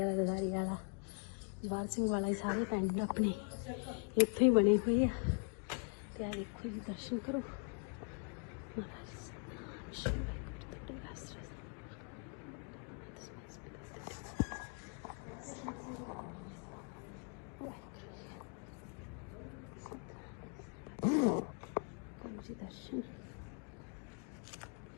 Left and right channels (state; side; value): quieter; right; 38.9 dB